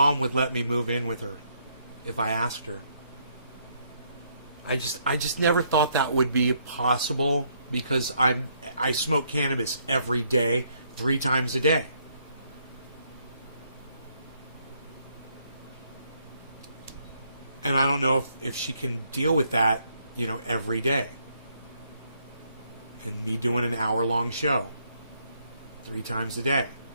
would let me move in with her if I asked her. I just never thought that would be possible because I smoke cannabis every day, 3 times a day. And I don't know if she can deal with that, you know, every day. And me doing an hour-long show 3 times a day.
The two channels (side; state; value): both; inverted; correlation -0.72